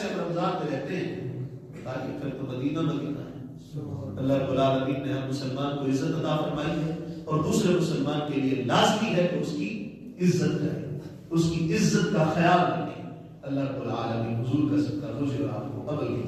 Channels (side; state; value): both; identical; correlation 1.00